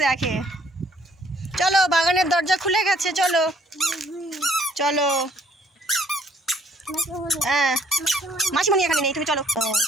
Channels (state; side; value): normal; both; correlation 0.62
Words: দেখে। চলো, বাগানের দরজা খুলে গেছে, চলো চলো। হ্যাঁ, মাসিমণি এখানে নেই, তুমি চলো।